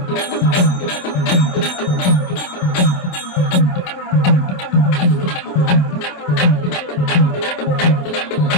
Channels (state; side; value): late; right; 27 ms